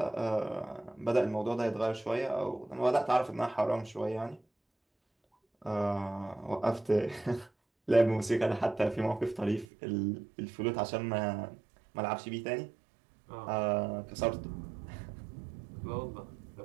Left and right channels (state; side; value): drops out; left; at 9.7 s